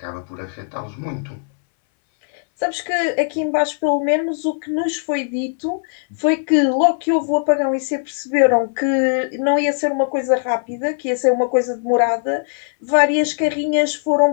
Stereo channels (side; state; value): right; silent; 63 dB below the other